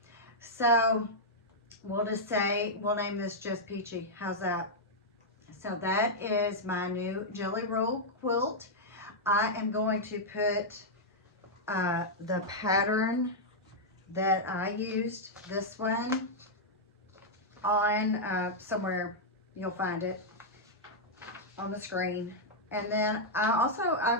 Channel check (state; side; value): normal; both; correlation -0.06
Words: So we'll just say, we'll name this just Peachy. How's that? So that is my new Jelly Roll quilt. I am going to put the pattern that I used, this one, on somewhere. You'll find it on the screen. And then I